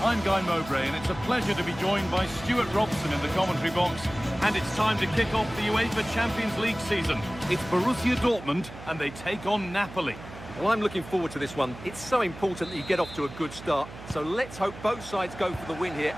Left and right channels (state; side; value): noise; right; hum, 15 dB below the sound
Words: Guy Mowbray, and it's a pleasure to be joined by Stuart Robson in the commentary box. And it's time to kick off the UEFA Champions League season. It's Borussia Dortmund, and they take on Napoli. Well, I'm looking forward to this one. It's so important that you get off to a good start. So let's hope both sides go for the win here